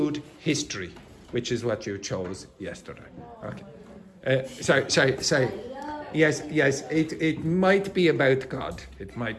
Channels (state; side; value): identical; both; correlation 1.00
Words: history, which is what you chose yesterday. Okay. Sorry. Yes, it might be about God. It